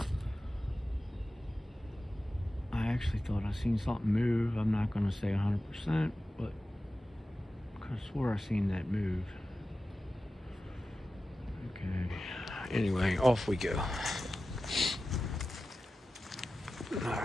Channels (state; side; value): normal; both; correlation 0.94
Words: I actually thought I seen something move. I'm not going to say 100%, but I could have swore I seen that move. Okay. Anyway, off we go.